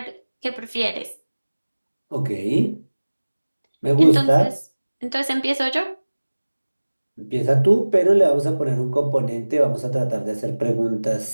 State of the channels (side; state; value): both; inverted; correlation -1.00